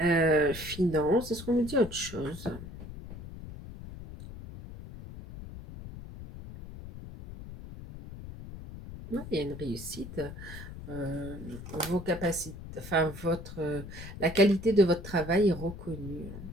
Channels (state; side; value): noise; left; rumble, 12 dB below the sound